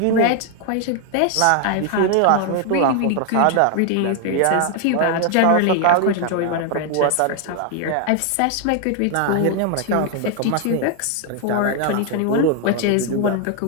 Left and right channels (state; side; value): different; both; correlation 0.00